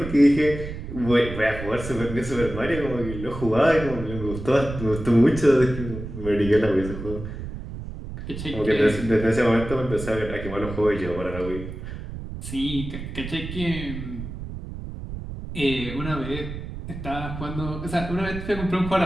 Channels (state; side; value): noise; right; rumble, 9 dB below the sound